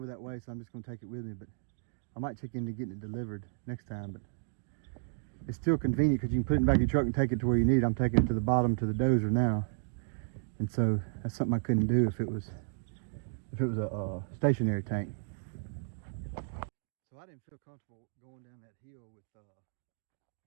that way, so I'm just going to take it with me. But I might check into getting it delivered next time. But it's still convenient because you can put it in the back of your truck and take it to where you need it. I'm taking it to the bottom to the dozer now, and so that's something I couldn't do if it was a stationary tank. So I didn't feel comfortable going down that hill with I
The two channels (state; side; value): silent; left; digital silence